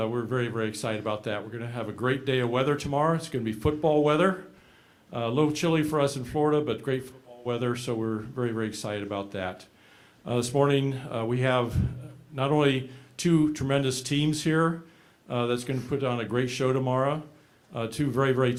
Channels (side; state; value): both; identical; correlation 1.00